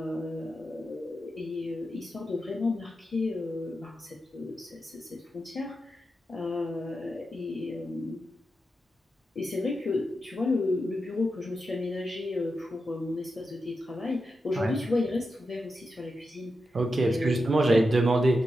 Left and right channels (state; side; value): normal; both; correlation 0.88